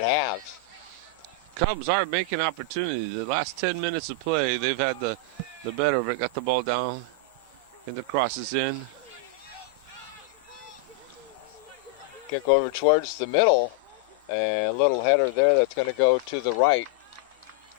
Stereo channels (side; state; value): right; quieter; 3.1 dB